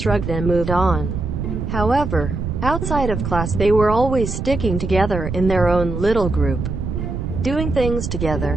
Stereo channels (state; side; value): noise; right; rumble, 4 dB below the sound